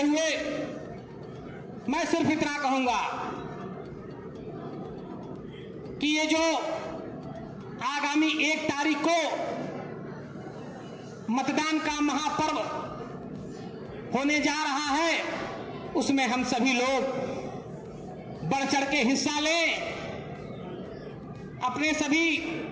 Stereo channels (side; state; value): both; identical; correlation 1.00